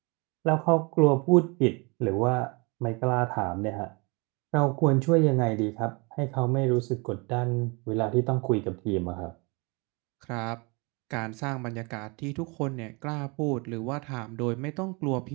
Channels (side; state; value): left; quieter; 29.3 dB